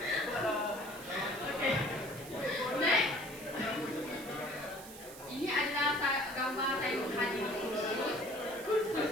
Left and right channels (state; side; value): noise; right; hiss, 15 dB below the sound